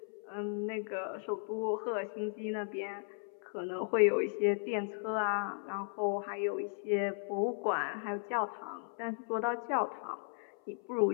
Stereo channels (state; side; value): silent; right; 54 dB below the other